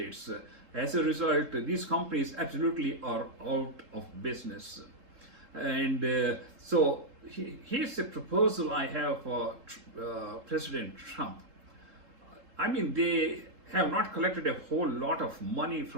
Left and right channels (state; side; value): late; left; 3.7 ms